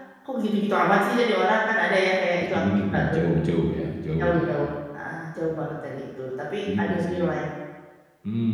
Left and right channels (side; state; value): both; identical; correlation 1.00